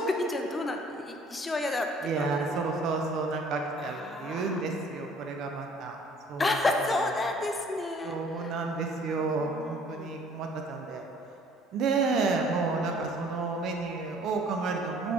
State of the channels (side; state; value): both; normal; correlation 0.55